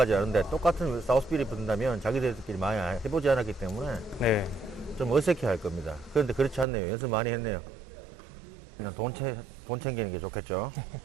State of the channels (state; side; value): drops out; left; at 6.7 s